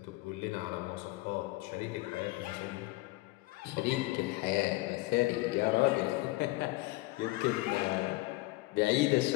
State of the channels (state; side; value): quieter; right; 20.6 dB